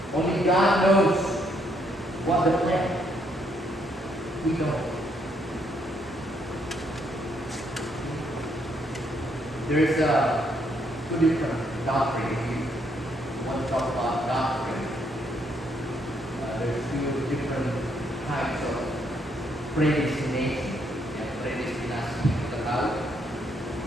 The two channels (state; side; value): normal; both; correlation 0.73